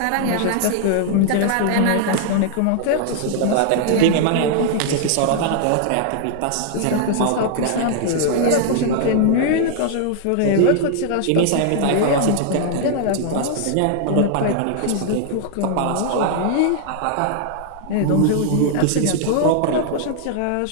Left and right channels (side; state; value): both; different; correlation -0.01